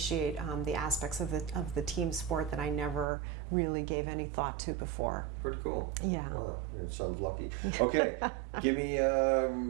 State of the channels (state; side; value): drops out; left; at 3.1 s